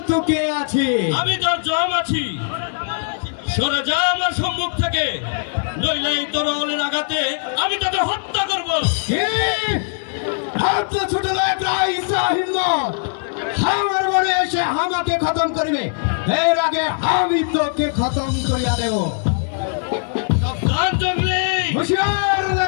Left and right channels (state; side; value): silent; right; 66 dB below the other